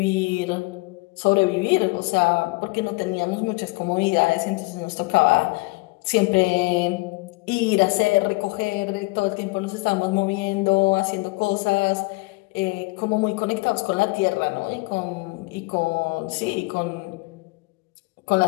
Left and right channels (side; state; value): right; quieter; 25.3 dB